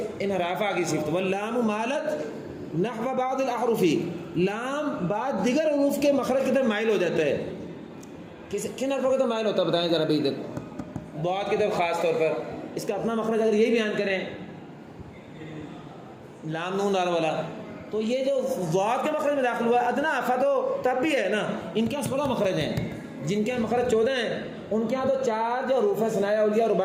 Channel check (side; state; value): both; identical; correlation 1.00